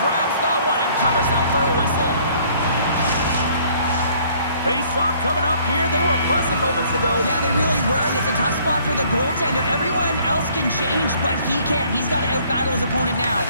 grabs that one and covers up for a whistle. Face-off coming up here. They were buzzing moments ago. Yeah, they really were, and it's a tough spot for the goaltender. Everyone else can change, but he can't. He's got to out-battle his opponent now.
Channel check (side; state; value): both; inverted; correlation -0.60